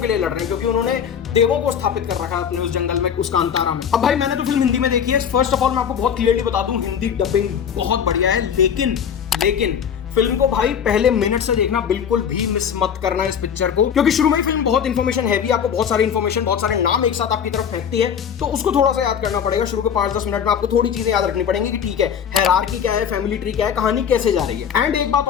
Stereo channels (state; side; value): quieter; right; 8.0 dB